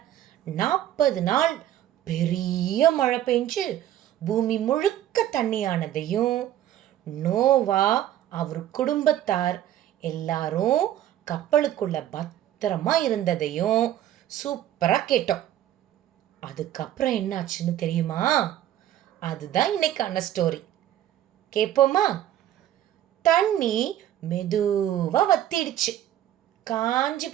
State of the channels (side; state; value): left; quieter; 12.1 dB